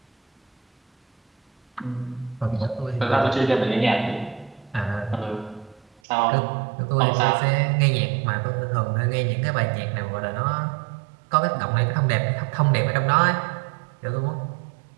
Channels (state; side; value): drops out; left; at 5.9 s